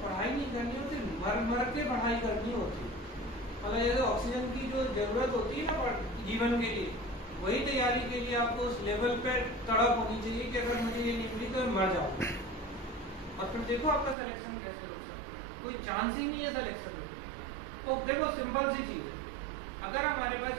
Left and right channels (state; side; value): drops out; left; at 14.2 s